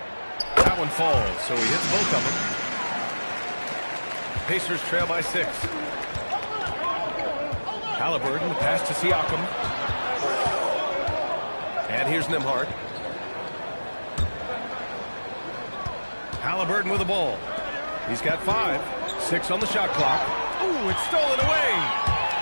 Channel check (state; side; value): inverted; both; correlation -1.00